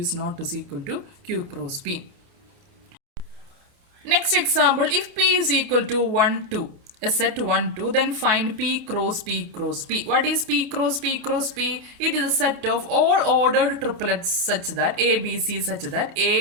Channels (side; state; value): left; late; 28 ms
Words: not is equal to Q cross P. Next example, if P is equal to 1, 2, a set 1, 2, then find P cross P cross P. What is P cross P cross P? It is a set of all ordered triplets such that A, B, C such that